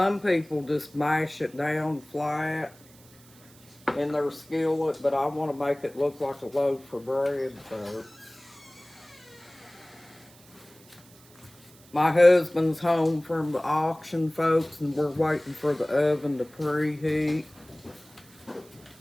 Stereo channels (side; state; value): right; noise; hiss, 25 dB below the sound